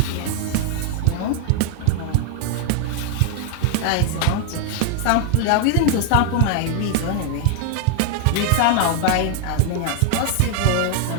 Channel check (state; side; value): different; both; correlation 0.00